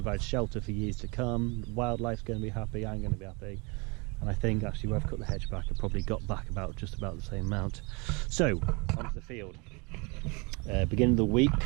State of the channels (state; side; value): quieter; left; 29.3 dB